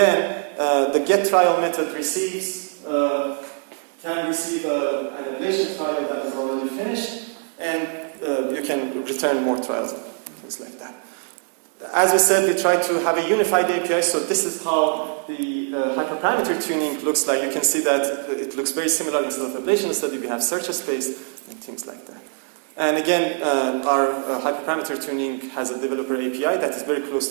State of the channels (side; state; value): left; quieter; 38.4 dB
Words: the get trial method can receive an ablation trial that is already finished, and you can return more trials, things like that. As we said, we try to have a unified API, so this is how the hyperparameter tuning looks like. You can see that it looks very similar. Instead of Ablation Study, we have search space and things like that. And again, our hyperparameter tuning has a developer API that is very close